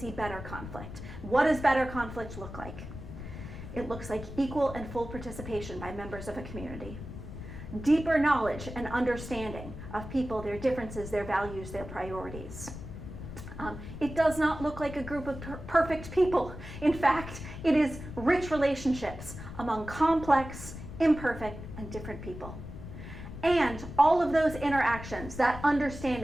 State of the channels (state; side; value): noise; left; rumble, 11 dB below the sound